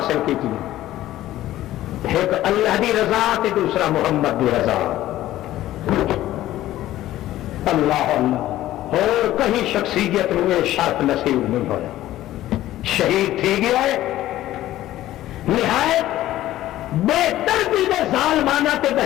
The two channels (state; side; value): quieter; right; 14.4 dB